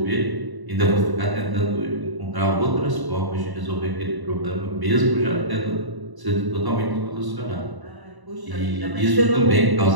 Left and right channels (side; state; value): left; late; 1.0 ms